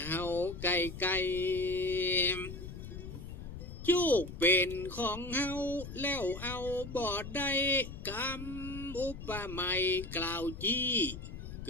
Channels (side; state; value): left; noise; rumble, 10 dB below the sound